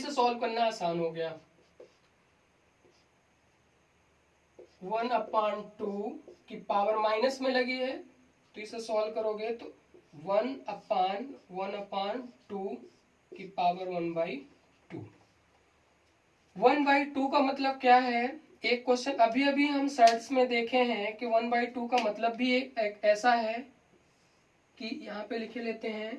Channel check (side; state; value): both; identical; correlation 1.00